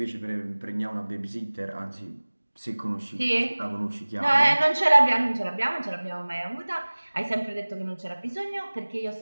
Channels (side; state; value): both; inverted; correlation -1.00